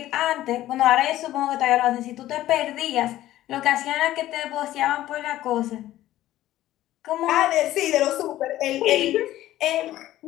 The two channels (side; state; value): right; quieter; 14.3 dB